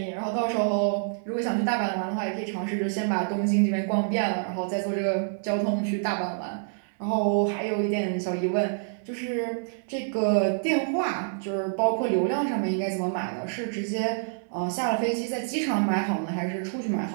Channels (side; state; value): left; silent; 60 dB below the other